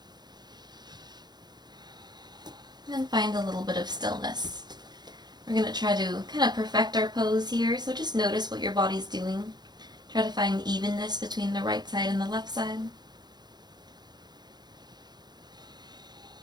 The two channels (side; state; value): left; late; 0.20 ms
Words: And then find a little bit of stillness. We're going to try to kind of perfect our pose here, so just notice what your body's doing. Try to find evenness between the right side and the left side.